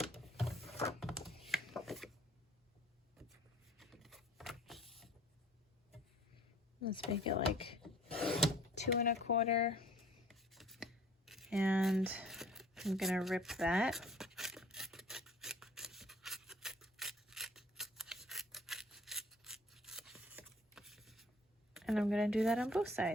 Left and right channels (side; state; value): both; normal; correlation 0.53